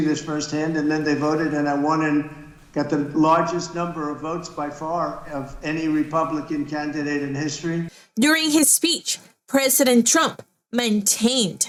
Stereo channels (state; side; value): identical; both; correlation 1.00